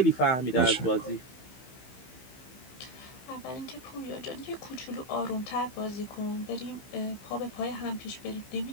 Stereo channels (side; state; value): right; late; 15 ms